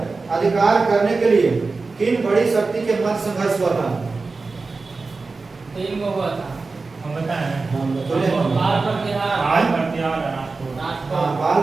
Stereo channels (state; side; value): quieter; left; 4.0 dB